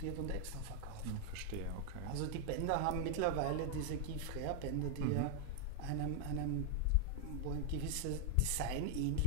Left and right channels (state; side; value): different; both; correlation 0.00